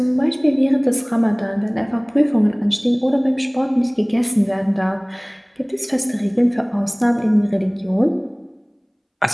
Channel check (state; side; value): identical; both; correlation 1.00